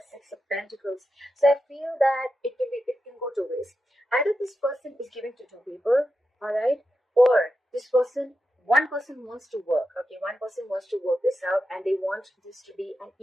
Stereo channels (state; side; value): normal; both; correlation 0.89